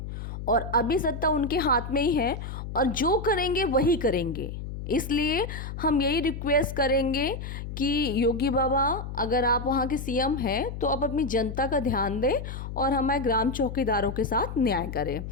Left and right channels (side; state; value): left; noise; hum, 8 dB below the sound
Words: और अभी सत्ता उनके हाथ में ही है, और जो करेंगे वही करेंगे। इसलिए हम यही रिक्वेस्ट करेंगे कि योगी बाबा, अगर आप वहाँ के सीएम हैं तो आप अपनी जनता का ध्यान दें और हमारे ग्राम चौकीदारों के साथ न्याय करें।